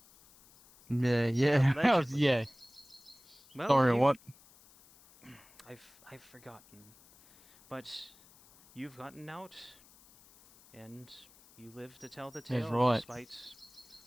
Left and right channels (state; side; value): noise; left; hiss, 26 dB below the sound